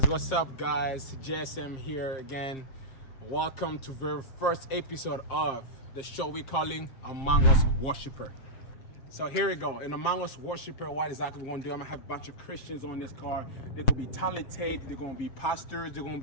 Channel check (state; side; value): late; right; 7.5 ms